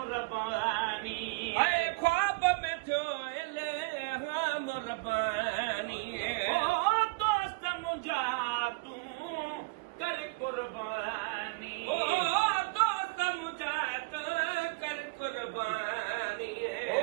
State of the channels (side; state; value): left; quieter; 28.1 dB